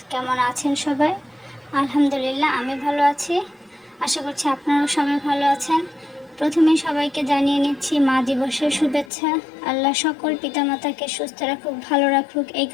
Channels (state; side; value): drops out; right; at 9.1 s